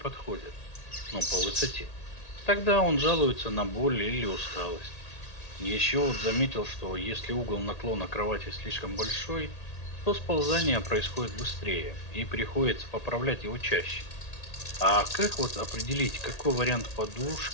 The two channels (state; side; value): late; right; 1.8 ms